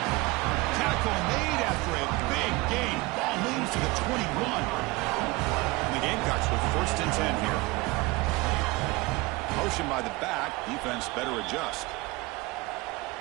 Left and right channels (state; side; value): quieter; left; 22.4 dB